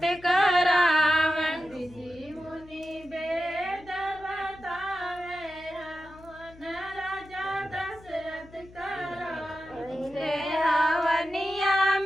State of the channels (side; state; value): left; noise; hum, 22 dB below the sound